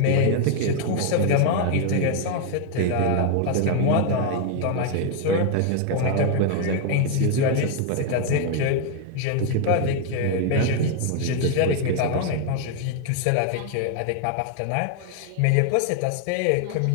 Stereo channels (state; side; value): different; both; correlation 0.00